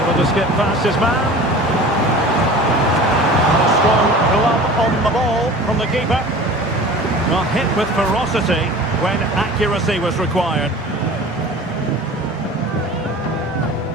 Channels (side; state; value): both; normal; correlation 0.40